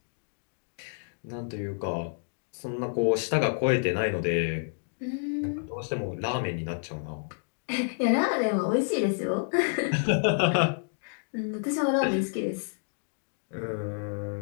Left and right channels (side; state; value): right; silent; digital silence